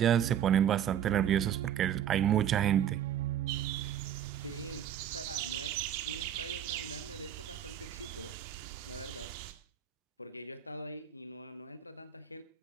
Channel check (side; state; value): left; quieter; 9.7 dB